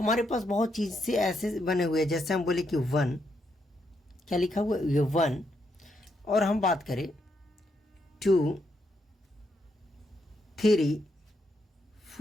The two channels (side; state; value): both; normal; correlation 0.79